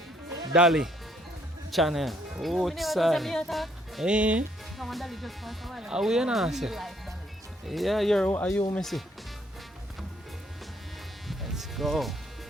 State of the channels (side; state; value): both; normal; correlation 0.68